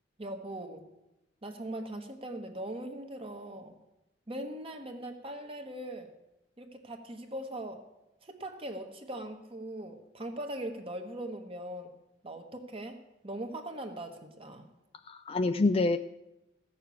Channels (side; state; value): both; normal; correlation 0.55